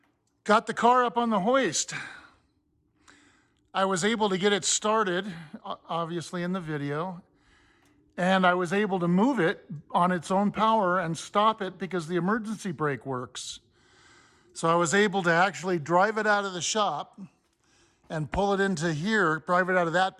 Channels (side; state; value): both; identical; correlation 1.00